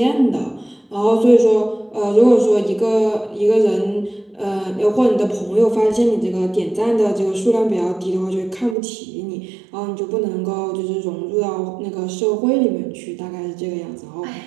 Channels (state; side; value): drops out; left; at 8.8 s